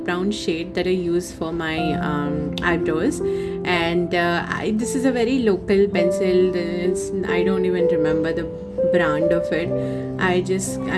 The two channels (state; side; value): identical; both; correlation 1.00